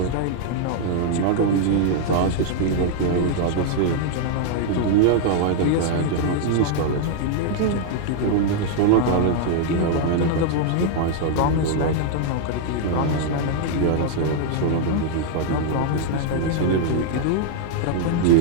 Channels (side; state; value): both; different; correlation 0.00